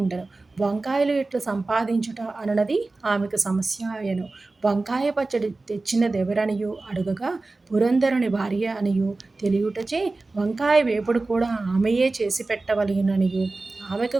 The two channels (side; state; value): left; quieter; 3.4 dB